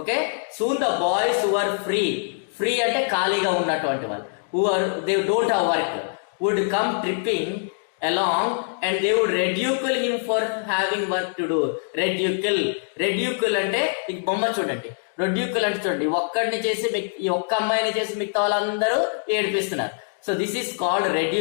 Soon the boys who are free అంటే ఖాళీగా ఉన్నటువంటి వాళ్ళు, they don't have work, would come tripping along and they would ridicule him for having work to do. Ridicule అంటే ఈ బొమ్మ చూడండి. ridicule అంటే చూడండి, ఒక్కడిని చేసి ఈ ఒక్క అమ్మాయిని చేసి మిగతా వాళ్ళందరూ ఏడిపిస్తున్నారు. So this is called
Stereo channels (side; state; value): right; silent; 63 dB below the other